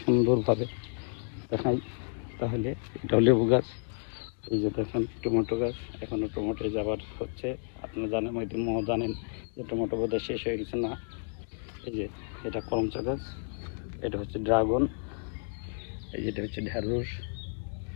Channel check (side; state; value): right; silent; digital silence